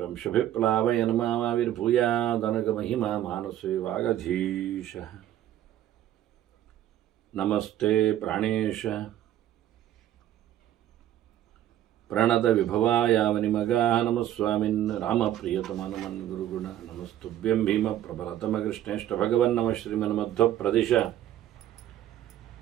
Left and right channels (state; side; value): quieter; left; 12.2 dB